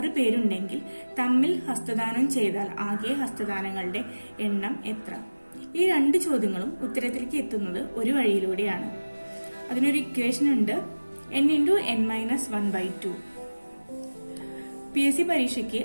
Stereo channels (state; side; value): inverted; both; correlation -1.00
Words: പേരുണ്ടെങ്കിൽ തമ്മിൽ ഹസ്തദാനം ചെയ്താൽ ആകെ ഹസ്തദാനങ്ങളുടെ എണ്ണം എത്ര? ഈ 2 ചോദ്യങ്ങളും ഉത്തരത്തിലേക്ക് എത്തുന്നത് ഒരു വഴിയിലൂടെയാണ്. അതിനൊരു ഇക്വേഷൻ ഉണ്ട്, n×n-1/2. PSC പരീക്ഷയ്ക്ക്